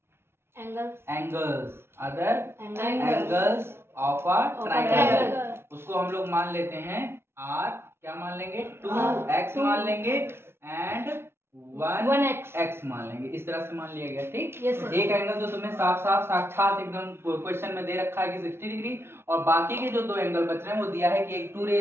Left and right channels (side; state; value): left; late; 0.12 ms